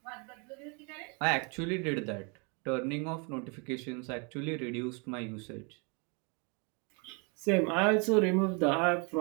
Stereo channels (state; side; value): quieter; left; 33.9 dB